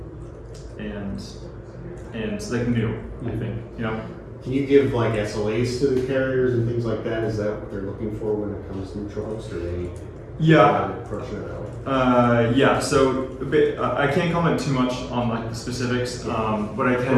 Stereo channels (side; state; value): both; identical; correlation 1.00